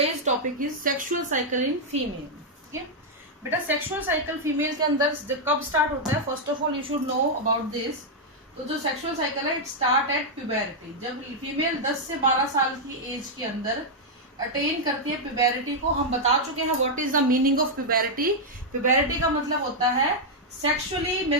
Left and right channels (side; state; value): both; normal; correlation -0.03